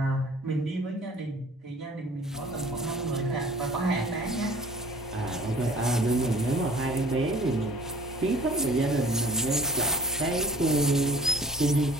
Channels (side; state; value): both; normal; correlation 0.50